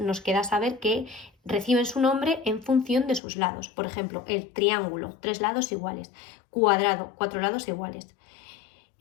queda saber que reciben su nombre en función de sus lados. Por ejemplo, el triángulo, 3 lados iguales; cuadrado, 4 lados iguales;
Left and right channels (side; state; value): right; drops out; at 3.2 s